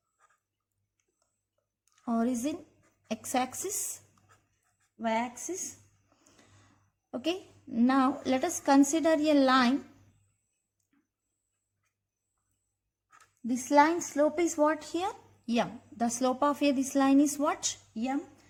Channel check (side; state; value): both; identical; correlation 1.00